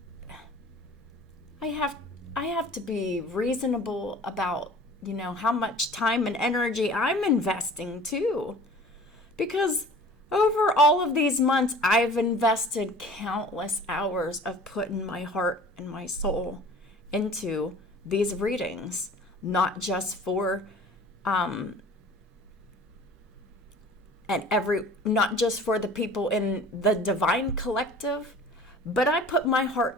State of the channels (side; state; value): both; normal; correlation 0.45